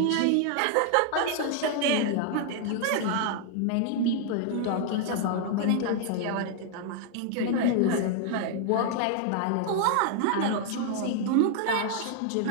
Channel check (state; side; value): different; both; correlation 0.00